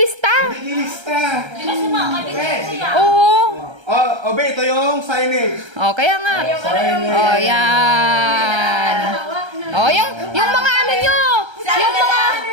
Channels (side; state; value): left; late; 1.3 ms